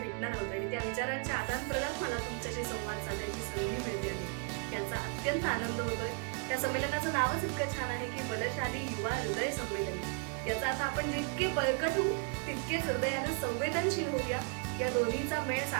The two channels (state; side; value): quieter; left; 36.2 dB